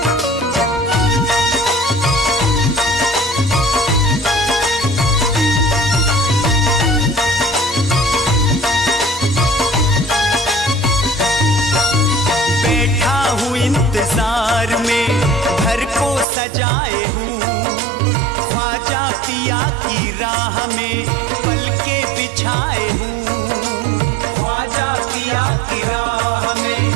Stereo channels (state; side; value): drops out; left; at 16.2 s